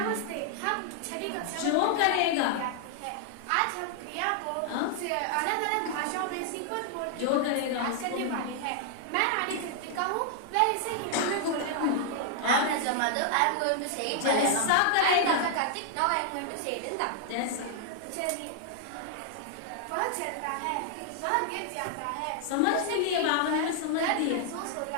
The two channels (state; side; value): different; both; correlation 0.00